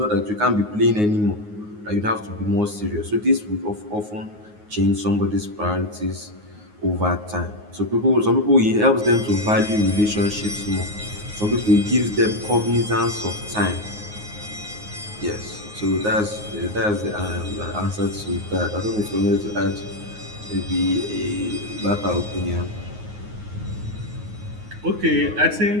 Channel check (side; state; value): left; late; 9.5 ms